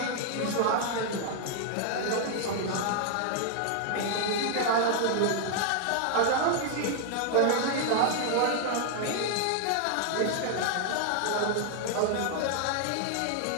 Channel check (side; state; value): both; different; correlation 0.00